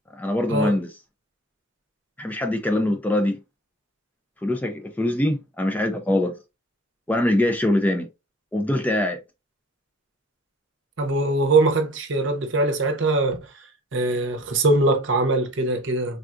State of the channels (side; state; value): both; normal; correlation 0.50